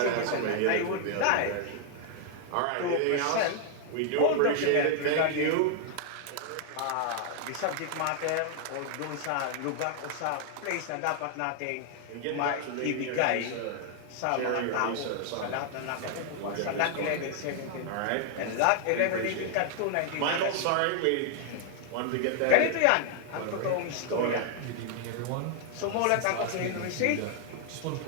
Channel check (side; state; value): both; different; correlation 0.00